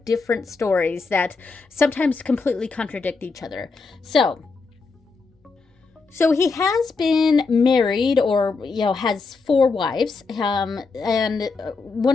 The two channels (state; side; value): quieter; right; 4.3 dB